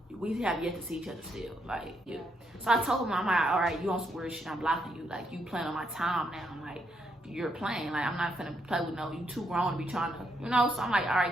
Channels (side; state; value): both; normal; correlation 0.77